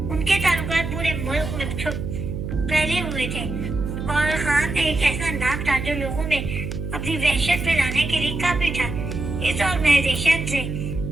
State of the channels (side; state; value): right; noise; hum, 5 dB below the sound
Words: उनके ताल्लुकात पूरे मुल्क में फैले हुए थे और खान एक ऐसा नाम था जो लोगों में अपनी वहशत फैलाने के लिए काफी था। इस ऑर्गेनाइजेशन से